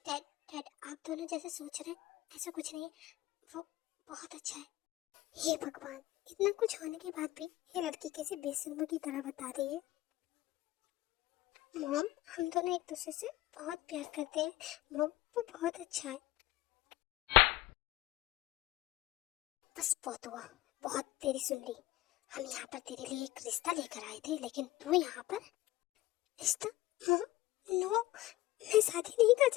डैड आप दोनों जैसे सोच रहे हैं ऐसा कुछ नहीं है, वो बहुत अच्छा है। हे भगवान, इतना कुछ होने के बाद भी ये लड़की कैसे बेशर्मों की तरह बता रही है। मॉम हम दोनों एक दूसरे से बहुत प्यार करते हैं मॉम, वो बहुत अच्छा है। बस बहुत हुआ, बहुत तेरी सुन ली। हम यहाँ पर तेरे लिए एक रिश्ता लेकर आए थे, लेकिन तू यहाँ पर रिश्ता? मॉम नो, मैं शादी नहीं कर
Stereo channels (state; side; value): quieter; right; 17.2 dB